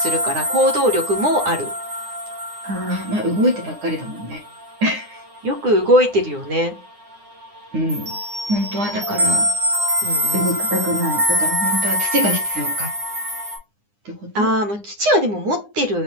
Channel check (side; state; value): left; late; 9.8 ms